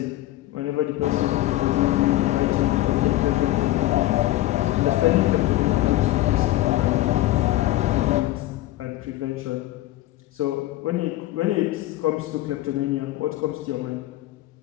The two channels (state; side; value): quieter; right; 16.0 dB